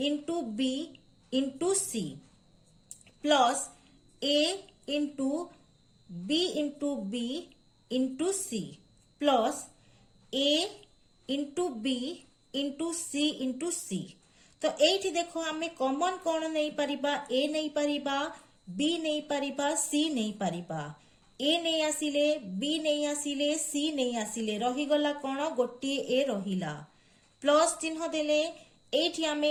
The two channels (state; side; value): identical; both; correlation 1.00